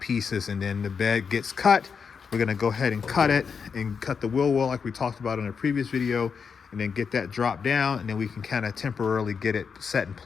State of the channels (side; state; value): right; quieter; 6.0 dB